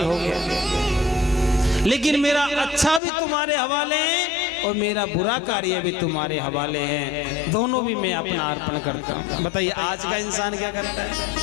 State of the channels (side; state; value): right; drops out; at 3.0 s